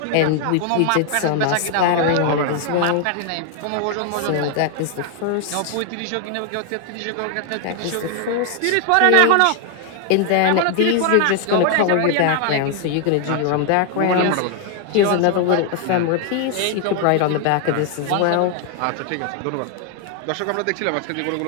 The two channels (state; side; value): different; both; correlation 0.00